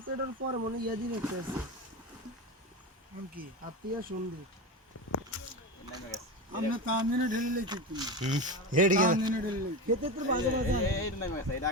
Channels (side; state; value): both; normal; correlation 0.21